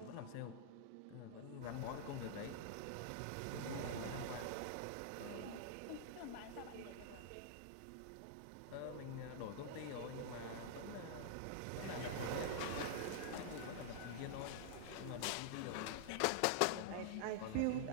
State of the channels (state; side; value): different; both; correlation -0.01